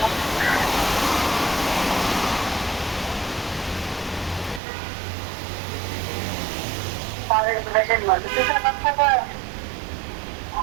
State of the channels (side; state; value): left; drops out; at 4.6 s